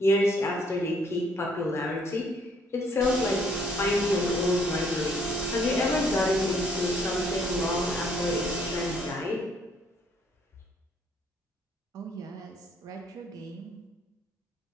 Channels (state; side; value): normal; both; correlation 0.65